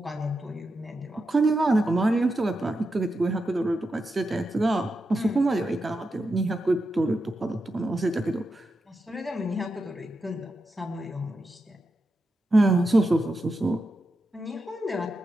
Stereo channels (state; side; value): normal; both; correlation 0.87